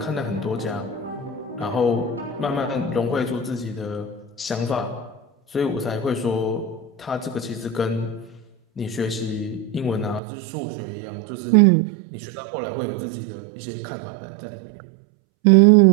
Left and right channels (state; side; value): drops out; left; at 10.2 s